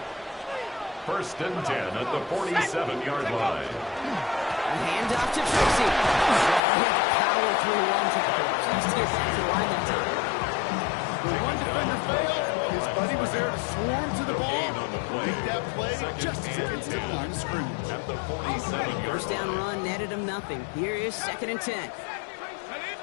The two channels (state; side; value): drops out; right; at 6.6 s